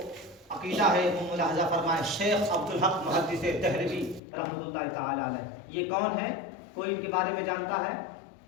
عقیدہ ہے وہ ملاحظہ فرمائے. شیخ عبدالحق محدث دہلوی رحمۃ اللہ تعالی علیہ, یہ کون ہے؟ کوئی ان کے بارے میں جانتا ہے؟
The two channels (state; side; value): drops out; right; at 4.2 s